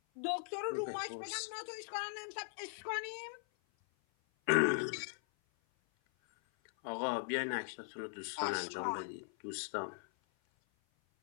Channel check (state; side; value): silent; right; 51 dB below the other